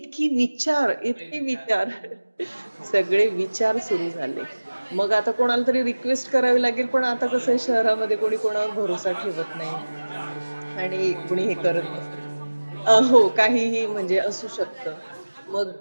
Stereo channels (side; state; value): both; inverted; correlation -1.00